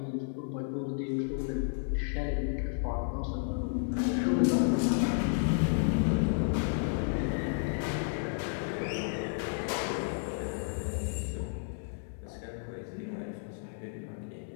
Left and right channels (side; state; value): right; silent; digital silence